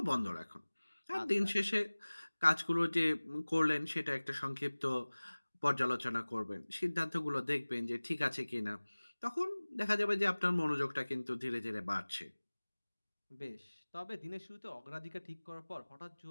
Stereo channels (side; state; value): both; inverted; correlation -1.00